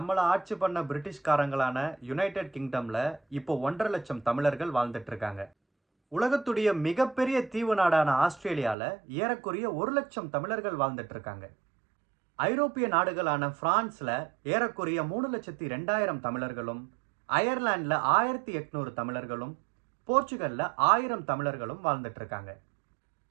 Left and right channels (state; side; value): drops out; left; at 8.8 s